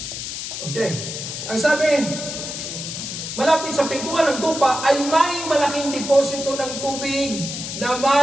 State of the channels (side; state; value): left; noise; hiss, 6 dB below the sound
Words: okay. Ang sabi, malapit sa pintuan ng tupa ay may malaking deposito ng tubig na